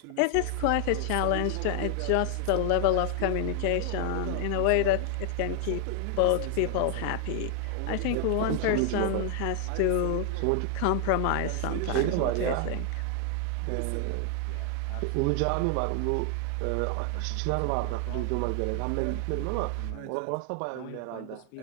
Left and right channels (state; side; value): different; both; correlation 0.00